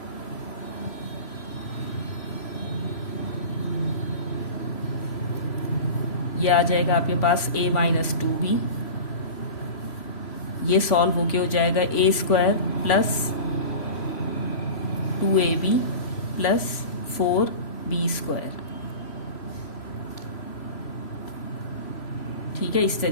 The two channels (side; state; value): right; late; 3.0 ms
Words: ये आ जाएगा आपके पास a माइनस 2b। ये सॉल्व होके हो जाएगा a square plus 2ab plus 4b square. ठीक है, इस